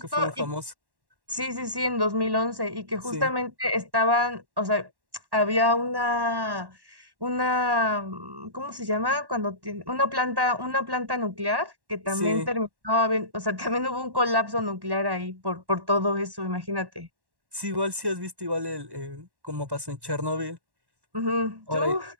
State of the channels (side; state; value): left; late; 1.1 ms